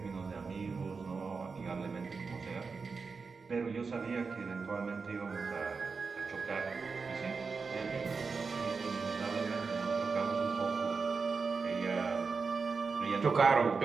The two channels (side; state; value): left; quieter; 4.8 dB